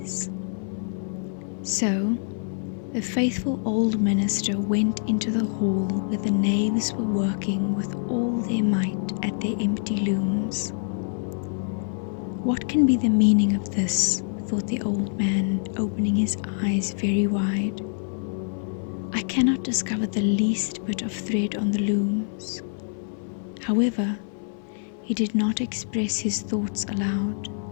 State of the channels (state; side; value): silent; right; 59 dB below the other